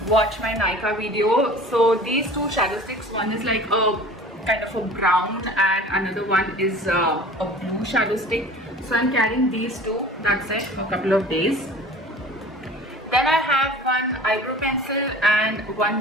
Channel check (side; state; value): both; normal; correlation 0.43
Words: watch my Nykaa video. So these two shadow sticks, one is like a kind of a brown and another one is a blue shadow stick. So I'm carrying these two, that's it, for a couple of days. Then I have one eyebrow pencil and